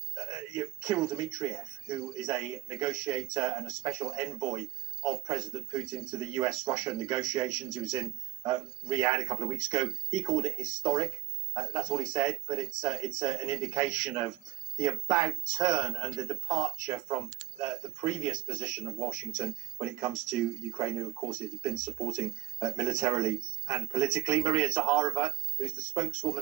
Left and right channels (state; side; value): quieter; left; 16.6 dB